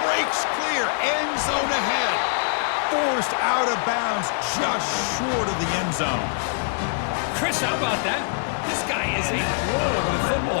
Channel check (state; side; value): silent; right; digital silence